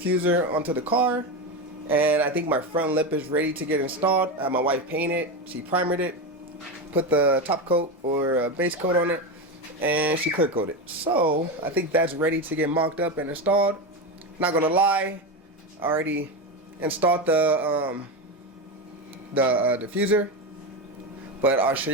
onto the car. And I think my front lip is ready to get installed. I had my wife paint it. She primered it, put the top coat or base coat on it, and she clear coated. So, I think that's ready to get mocked up and installed. Not gonna lie, I already installed the diffuser, but I'll show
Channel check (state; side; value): normal; both; correlation 0.16